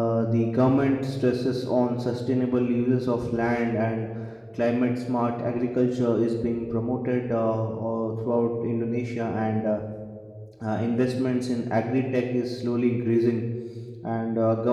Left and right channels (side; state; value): both; identical; correlation 1.00